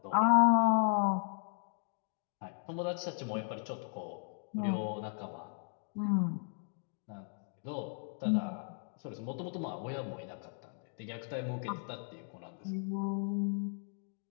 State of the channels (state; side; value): silent; right; 54 dB below the other